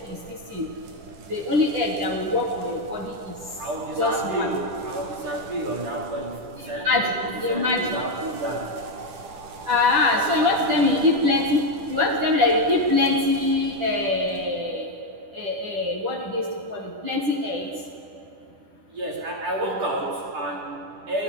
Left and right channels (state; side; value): late; left; 10 ms